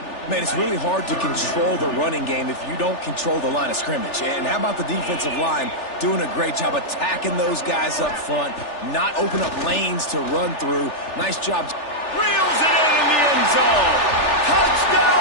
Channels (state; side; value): late; right; 3.4 ms